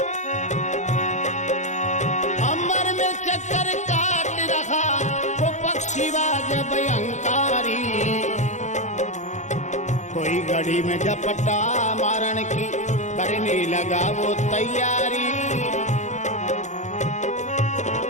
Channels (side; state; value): right; late; 0.34 ms